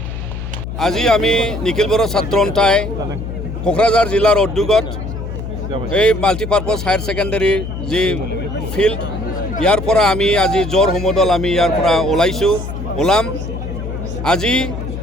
আজি আমি নিখিল বড়ো ছাত্ৰ সন্থাই কোকৰাঝাৰ জিলাৰ উদ্যোগত এই multipurpose higher ছেকেণ্ডেৰীৰ যি ফিল্ড ইয়াৰ পৰা আমি আজি জোৰ সমদল আমি ইয়াৰ পৰা ওলাম আজি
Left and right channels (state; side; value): noise; left; hum, 7 dB below the sound